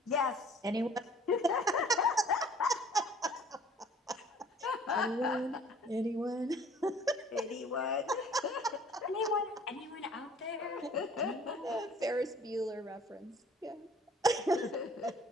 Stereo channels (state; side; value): normal; both; correlation 0.52